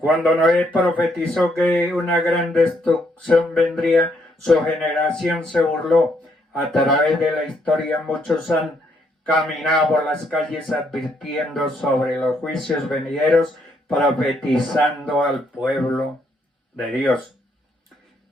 Noé profetizó que una gran destrucción vendría, su generación se burló. A través de la historia muchos han caminado por las calles advirtiendo sobre los juicios venideros, profetizando al pueblo de Dios.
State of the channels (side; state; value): both; normal; correlation 0.73